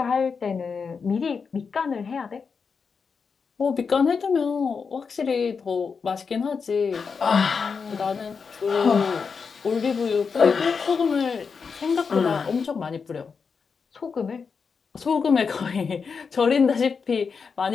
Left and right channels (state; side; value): quieter; right; 5.5 dB